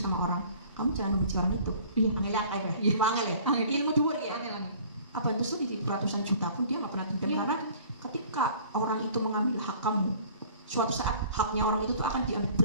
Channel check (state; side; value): inverted; both; correlation -0.50